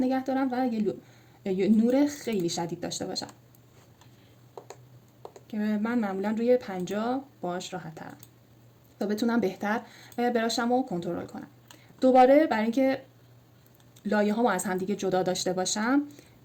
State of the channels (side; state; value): both; identical; correlation 1.00